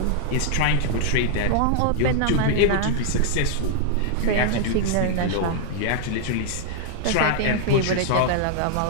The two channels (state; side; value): different; both; correlation -0.01